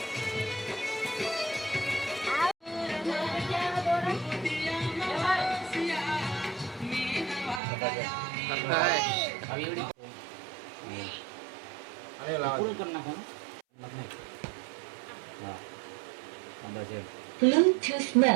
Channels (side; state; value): left; drops out; at 7.6 s